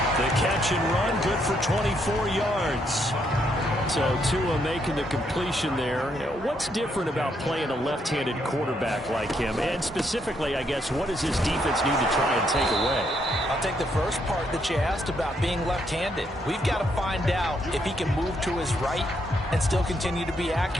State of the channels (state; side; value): normal; both; correlation 0.75